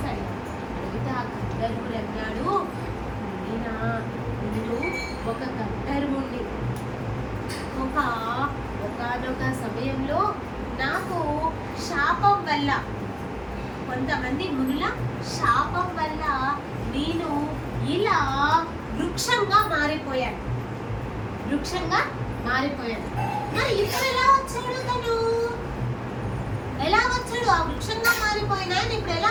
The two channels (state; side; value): identical; both; correlation 1.00